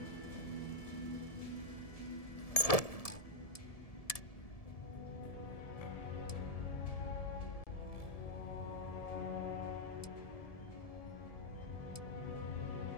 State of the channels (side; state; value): right; late; 1.7 ms